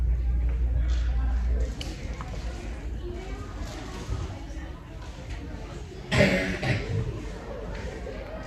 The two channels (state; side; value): identical; both; correlation 1.00